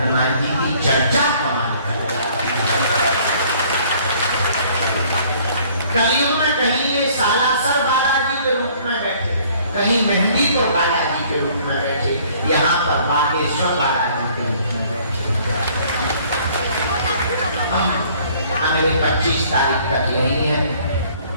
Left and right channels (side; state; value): both; inverted; correlation -0.57